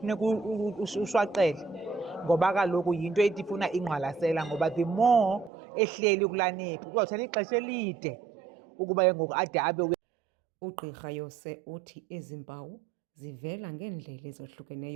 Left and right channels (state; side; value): drops out; left; at 5.5 s